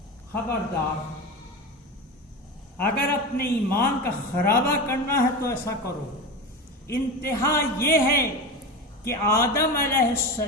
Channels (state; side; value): normal; both; correlation 0.24